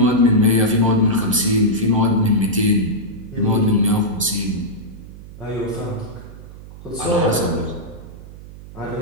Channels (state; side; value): noise; right; hum, 16 dB below the sound